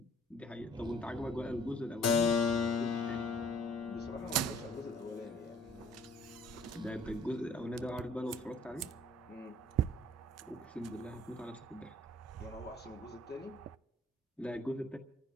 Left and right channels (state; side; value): normal; both; correlation 0.56